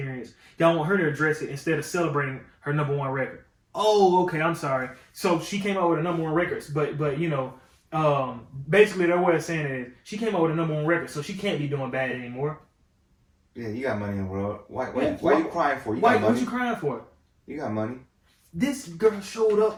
Y'all want her to address it instead of celebrating her #1 record. Oh, okay, I'm sorry. So she came out with a #1 record, but basically their way of saying it is she came out with a #1 record, so she can't be doing bad anymore. Yeah, you got money in the world. Why are you crying for? What you crying for? You got money. This girl showed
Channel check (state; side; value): identical; both; correlation 1.00